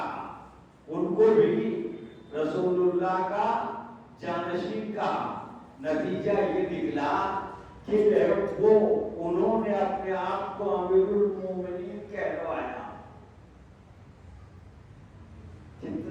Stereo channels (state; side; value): identical; both; correlation 1.00